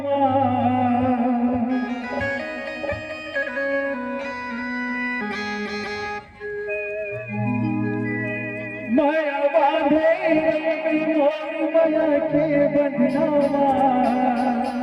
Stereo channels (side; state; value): both; identical; correlation 1.00